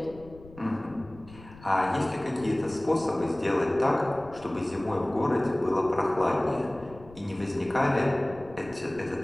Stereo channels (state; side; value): noise; left; rumble, 20 dB below the sound